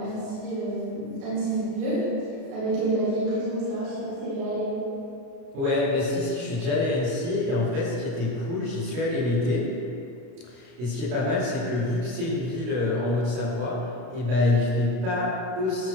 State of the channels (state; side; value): late; left; 32 ms